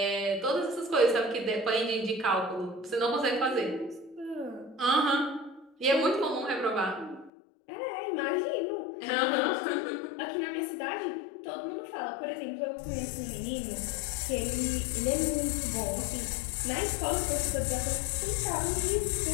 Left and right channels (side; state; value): right; drops out; at 7.3 s